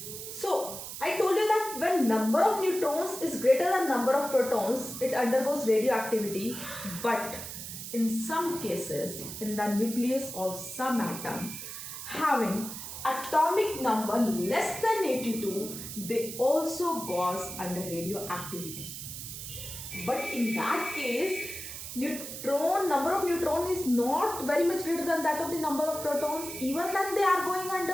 So, I told you that when number of neutrons is greater than number of protons, it undergoes radioactivity, but in some cases, in the nucleus of some atom having atomic number less than 82, they also goes under radioactivity. But in that case, number of neutrons is not very much greater than that of the number of protons, even then they are going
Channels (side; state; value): right; noise; hiss, 9 dB below the sound